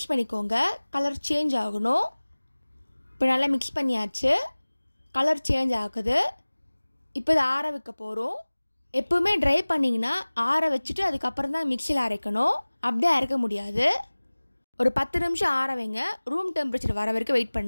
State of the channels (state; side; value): inverted; both; correlation -1.00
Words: பண்ணிக்கோங்க. கலர் சேஞ்ச் ஆகணும். இப்போ நல்லா மிக்ஸ் பண்ணியாச்சு. கலர் சேஞ்ச் ஆகுது. இப்போ இதை ஆற வைக்க போகிறோம். எப்பவுமே ட்ரை பண்ணிங்கன்னா ஆற வச்சுட்டு அதுக்கப்புறம் தான் மிக்சியில் அரைக்கணும். அப்படியே அரைக்க முடியாது. ஒரு 10 நிமிஷம் ஆற வைங்க. ரூம் டெம்பரேச்சர் வர வரைக்கும் வெயிட்